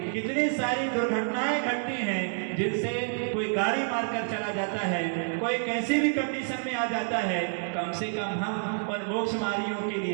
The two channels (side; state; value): left; silent; digital silence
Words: कितनी सारी दुर्घटनाएं घटती हैं, जिनसे कोई गाड़ी मारकर चला जाता है, कोई कैसी भी कंडीशन में आ जाता है। कम से कम हम और मोक्षमार्गियों के